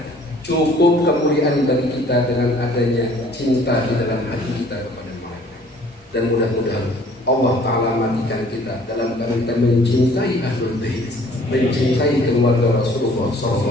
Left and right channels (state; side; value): normal; both; correlation 0.55